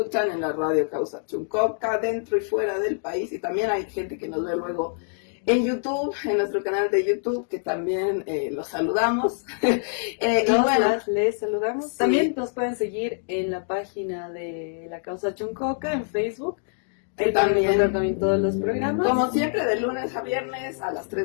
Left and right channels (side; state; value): right; silent; digital silence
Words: en la radio Causa Chuncoca, dentro y fuera del país. Y también hay gente que nos ve luego en YouTube, en nuestro canal de YouTube, que también los saludamos. Y bueno, les saludamos. Sí. También nos pueden seguir en la página de la Causa Chuncoca en Facebook. Ahí también todos los programas. Como siempre, de lunes a viernes a las